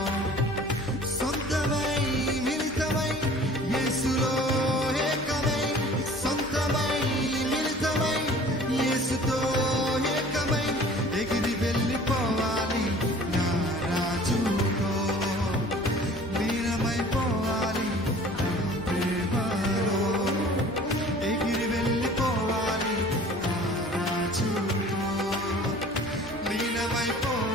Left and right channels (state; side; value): normal; both; correlation 0.47